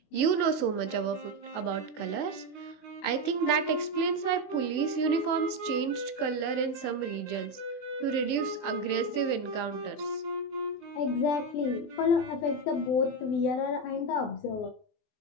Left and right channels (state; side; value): late; right; 24 ms